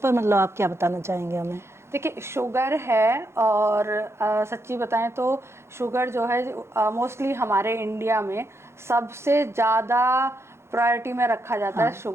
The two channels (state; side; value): late; left; 0.13 ms